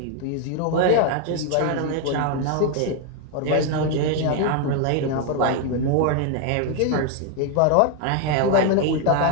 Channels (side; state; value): both; different; correlation 0.01